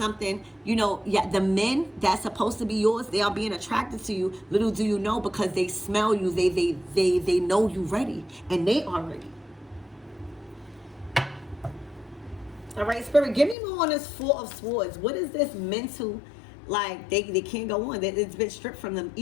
you know, yeah, the men that's supposed to be yours, they are being attracted to you. Little do you know, because they smell you, they know you ready, and they are ready. All right, Spirit, give me more on this Four of Swords. What is this mental, like, they can't go on. It's been stripped from them,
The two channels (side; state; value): right; drops out; at 13.6 s